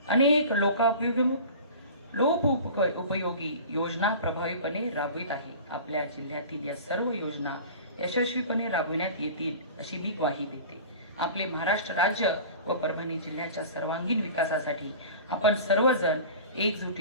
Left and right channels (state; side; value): inverted; both; correlation -0.38